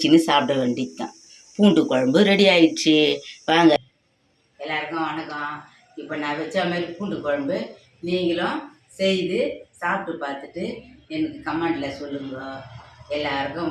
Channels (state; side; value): identical; both; correlation 1.00